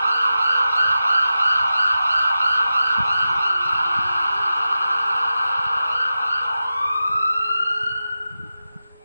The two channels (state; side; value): inverted; both; correlation -0.92